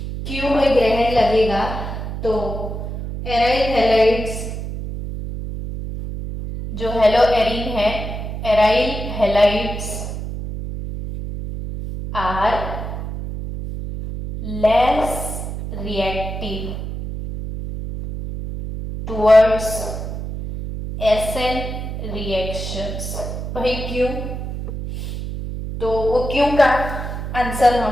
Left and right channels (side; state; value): right; noise; hum, 6 dB below the sound